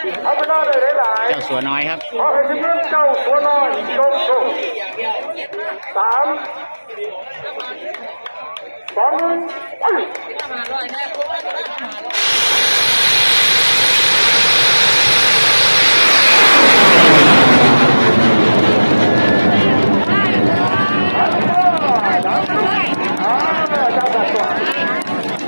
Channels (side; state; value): both; inverted; correlation -1.00